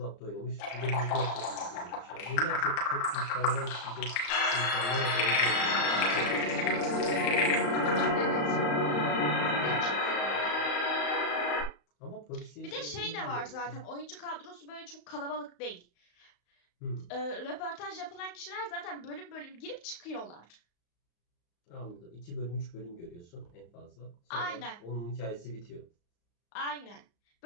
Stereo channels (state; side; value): late; right; 35 ms